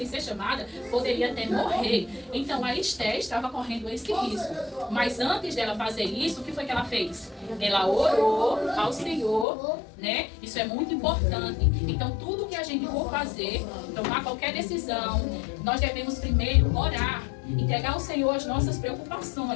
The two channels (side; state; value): right; drops out; at 9.5 s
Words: ser chamada, poderia até morrer. Então a Esther estava correndo esse risco. Mas antes dela fazer isso, o que foi que ela fez? Ela orou ao Senhor, né? Isso é muito importante. Então tudo que a gente for fazer, tomar qualquer decisão, nós devemos primeiro orar, entregar ao Senhor as nossas